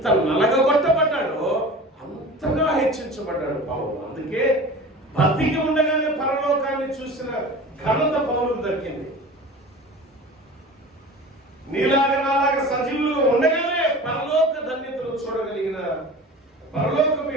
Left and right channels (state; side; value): normal; both; correlation 0.37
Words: నలగగొట్టబడ్డాడో అంతగా హెచ్చించబడ్డాడు పౌలు. అందుకే భక్తికి ఉండగానే పరలోకాన్ని చూసిన ఘనత పౌలుకు దక్కింది. నీలాగా నాలాగా సజీవులుగా ఉండగానే పరలోక ధన్యతను చూడగలిగిన, పరలోకం